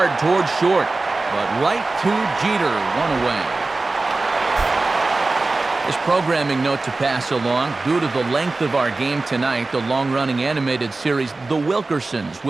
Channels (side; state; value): left; quieter; 3.4 dB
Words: towards short. But right to Jeter, 1 away. This programming note to pass along. Due to the length of our game tonight, the long-running animated series The Wilkersons